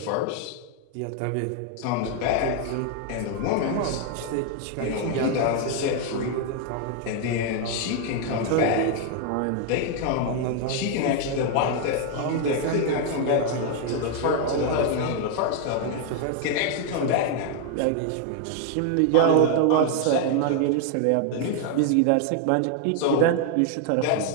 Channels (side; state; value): both; different; correlation 0.00